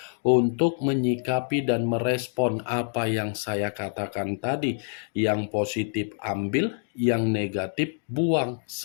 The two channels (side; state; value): right; silent; digital silence